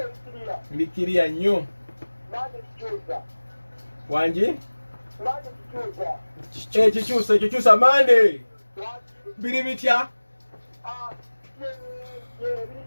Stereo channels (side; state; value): both; inverted; correlation -1.00